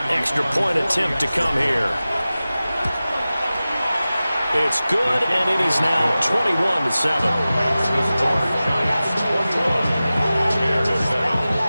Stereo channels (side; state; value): both; inverted; correlation -0.96